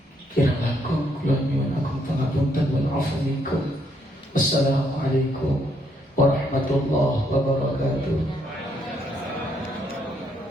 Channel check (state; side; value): normal; both; correlation 0.73